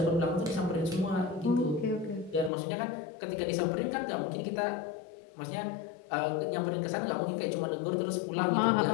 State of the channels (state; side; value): drops out; right; at 2.5 s